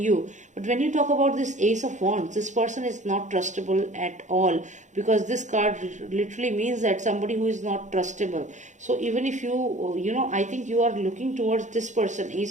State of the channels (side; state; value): left; late; 0.35 ms